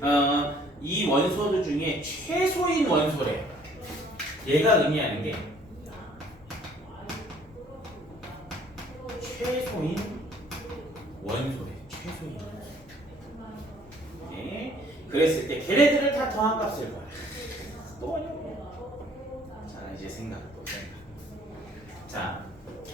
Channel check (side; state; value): both; normal; correlation 0.58